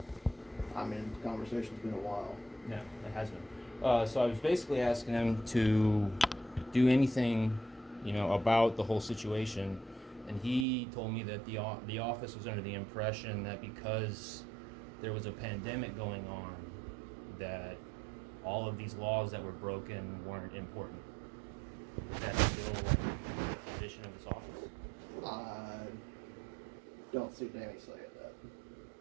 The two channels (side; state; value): left; drops out; at 10.7 s